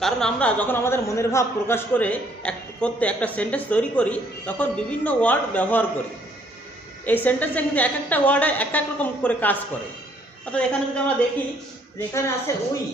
কারণ আমরা যখন আমাদের মনের ভাব প্রকাশ করতে একটা সেন্টেন্স তৈরি করি তখন বিভিন্ন ওয়ার্ড ব্যবহার করি। এই সেন্টেন্সে কিন্তু এক একটা ওয়ার্ডে এক এক রকম করে কাজ করে। অর্থাৎ এখানে যদি আমরা দেখি যে এখানে আছে উই,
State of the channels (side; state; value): both; normal; correlation 0.64